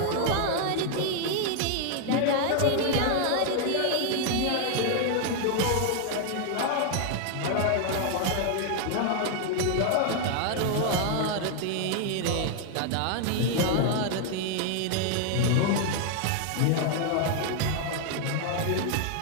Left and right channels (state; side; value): different; both; correlation 0.00